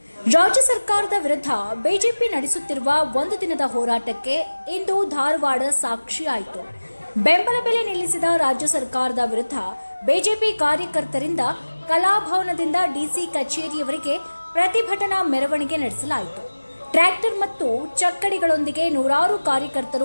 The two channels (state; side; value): inverted; both; correlation -1.00